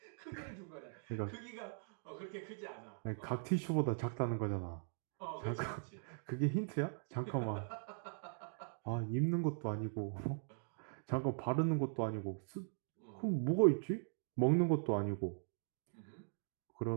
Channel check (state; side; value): silent; left; digital silence